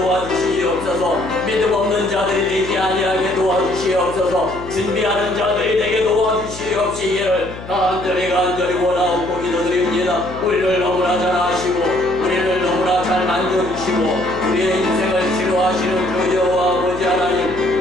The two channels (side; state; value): left; noise; hum, 13 dB below the sound